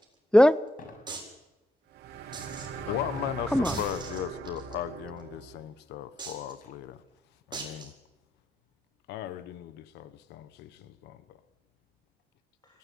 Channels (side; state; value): both; normal; correlation 0.80